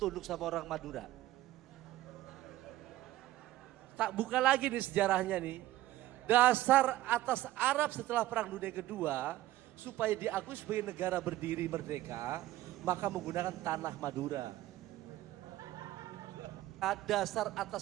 sama orang Madura? Tak buka lagi nih sejarahnya nih. Dasar atas Arab setelah Perang Dunia Kedua, supaya diakui sebagai negara berdiri merdeka, maka menggunakan tanah Madura. Dasar atas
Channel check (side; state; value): left; quieter; 15.5 dB